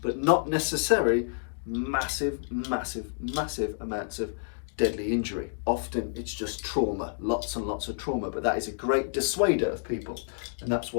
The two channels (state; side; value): silent; right; digital silence